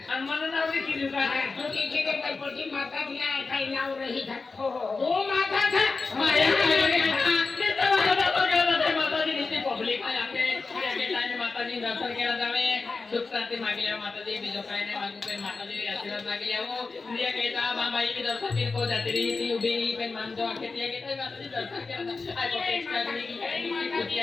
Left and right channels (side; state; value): right; quieter; 4.1 dB